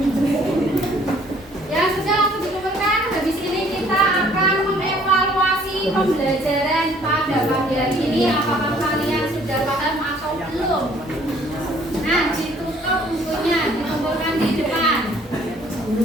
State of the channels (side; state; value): both; normal; correlation 0.59